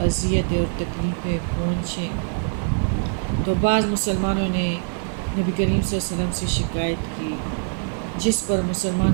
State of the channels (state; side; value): quieter; left; 38.6 dB